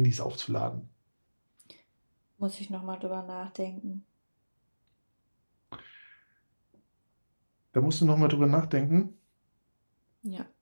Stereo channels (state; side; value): inverted; both; correlation -1.00